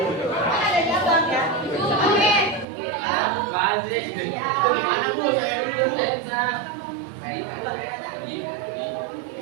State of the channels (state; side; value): drops out; left; at 2.7 s